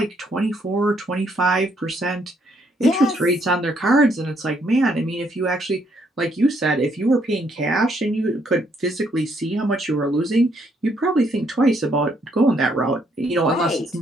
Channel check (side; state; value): both; normal; correlation 0.71